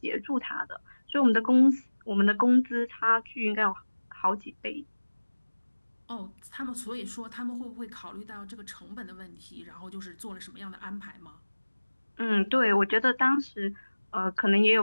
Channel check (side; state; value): both; inverted; correlation -1.00